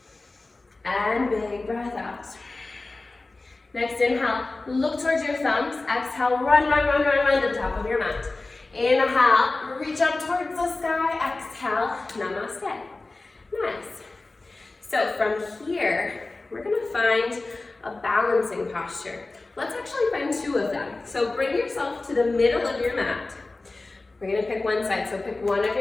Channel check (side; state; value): right; quieter; 3.3 dB